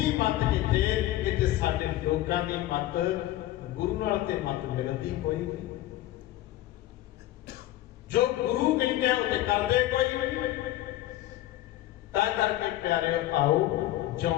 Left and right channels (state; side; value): quieter; right; 14.8 dB